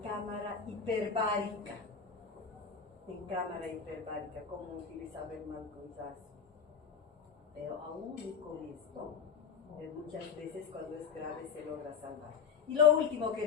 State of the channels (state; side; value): quieter; right; 6.4 dB